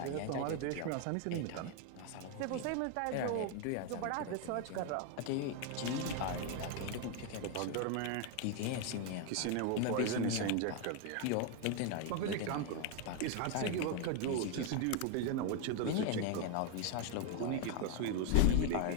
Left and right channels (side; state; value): both; different; correlation 0.01